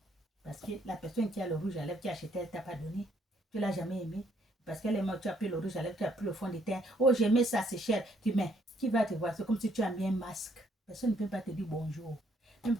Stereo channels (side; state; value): both; normal; correlation 0.68